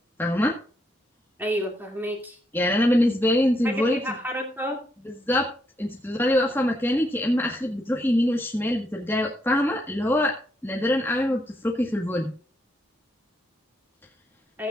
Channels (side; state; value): both; normal; correlation 0.77